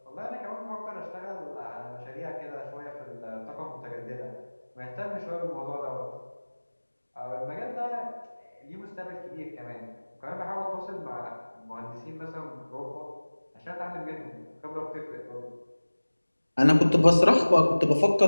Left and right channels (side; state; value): both; inverted; correlation -1.00